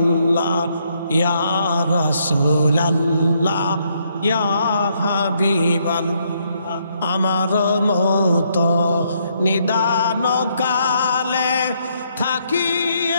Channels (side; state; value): both; inverted; correlation -0.73